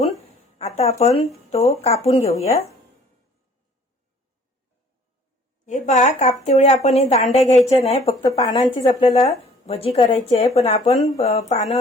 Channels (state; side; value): normal; both; correlation 0.55